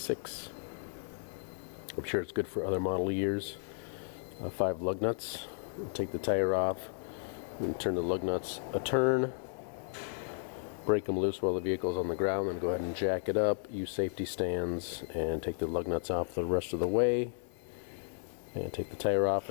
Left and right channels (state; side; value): silent; right; 55 dB below the other